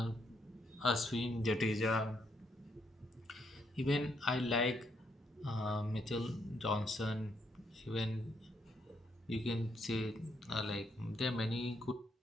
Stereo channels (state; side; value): normal; both; correlation 0.75